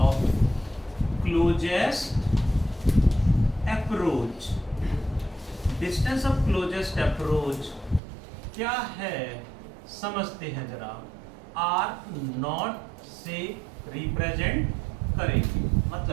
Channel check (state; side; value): drops out; left; at 8.0 s